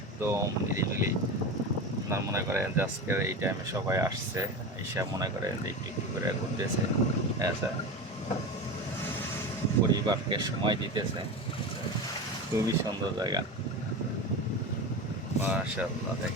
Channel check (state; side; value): normal; both; correlation 0.25